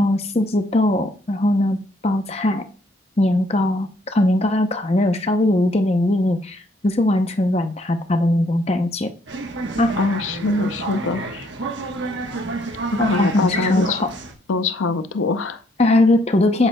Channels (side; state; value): both; normal; correlation 0.68